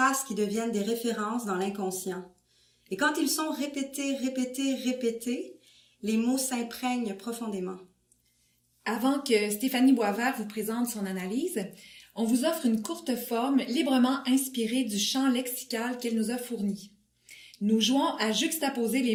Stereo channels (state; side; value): identical; both; correlation 1.00